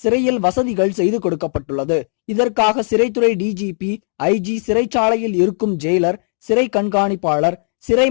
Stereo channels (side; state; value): right; silent; digital silence